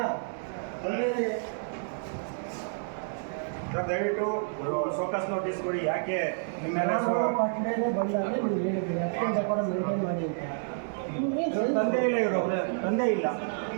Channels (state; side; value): silent; left; 58 dB below the other